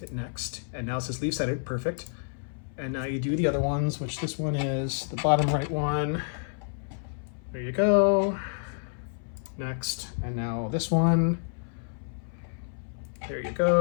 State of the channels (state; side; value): silent; right; 59 dB below the other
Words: next. And now it says leave centered. Perfect. And now you do the other ones, which this one is the bottom right one. There you go. Next. And now this one. There you